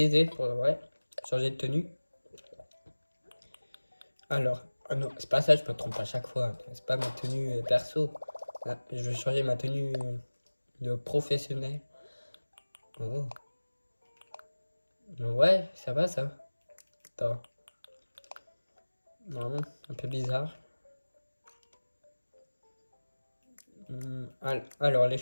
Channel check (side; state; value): both; inverted; correlation -1.00